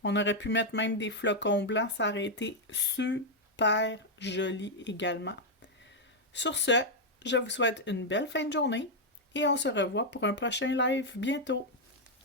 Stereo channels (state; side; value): normal; both; correlation 0.00